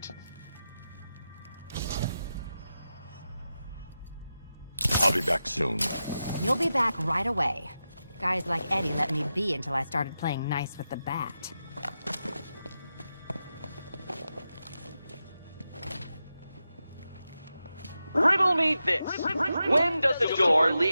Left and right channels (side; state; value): both; inverted; correlation -0.90